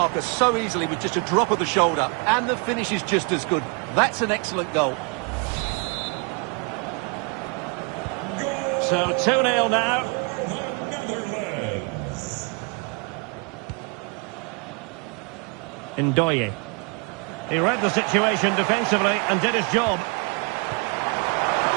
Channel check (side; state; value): left; quieter; 32.7 dB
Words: so easily with just a drop of the shoulder, and the finish is just as good. That's an excellent goal. So 2-0 now. Ndoye. He read the situation defensively and did his job.